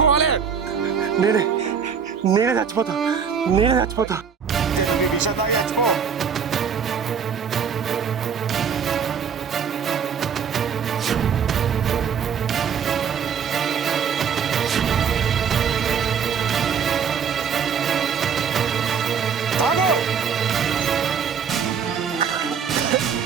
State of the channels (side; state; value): left; quieter; 7.0 dB